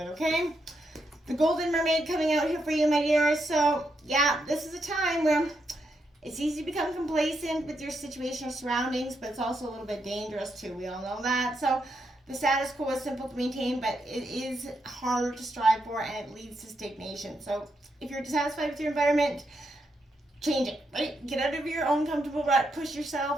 okay? The Golden Mermaid coming out here for you, my dears. So, yeah, this is a time where it's easy to become complacent with your situation or surroundings, but it's also a little bit dangerous too. We all know that. So the status quo is simple to maintain, but it is harder to strive for, and it leads to stagnation. So if you're dissatisfied with your environment, change it, right? Get out of your own comfortable rut, push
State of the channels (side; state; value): both; normal; correlation 0.81